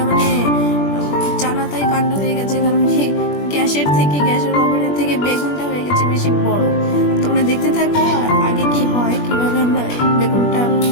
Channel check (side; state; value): right; late; 21 ms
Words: জানাতাই কাণ্ড হয়ে গেছে, কারণ কি গ্যাসের ওভেনের থেকে বেগুনটা হয়ে গেছে বেশি বড়। তোমরা দেখতে থাকো আগে কি হয়, কিভাবে আমরা বেগুনটা